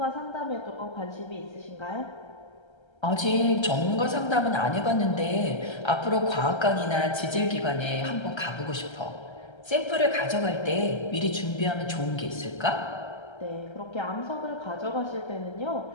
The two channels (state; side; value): late; right; 1.3 ms